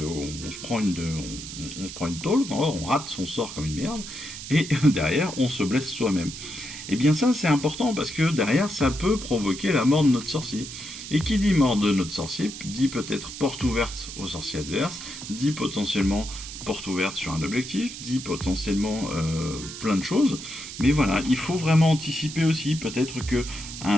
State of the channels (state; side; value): noise; right; hiss, 10 dB below the sound